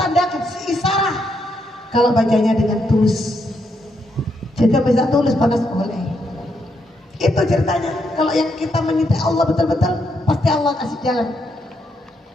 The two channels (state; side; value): normal; both; correlation 0.78